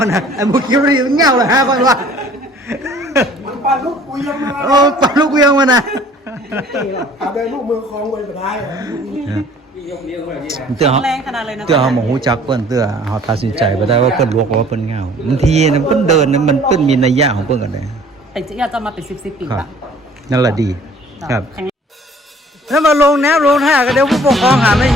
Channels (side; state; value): both; normal; correlation 0.53